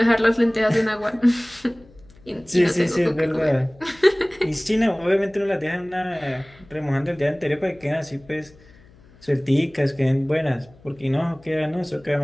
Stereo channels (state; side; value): noise; left; hum, 26 dB below the sound